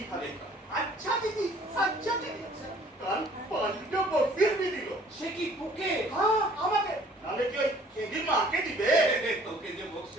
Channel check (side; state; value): both; normal; correlation 0.55